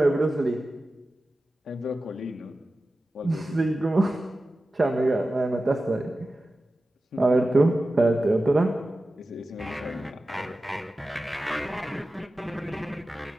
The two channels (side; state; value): both; normal; correlation 0.94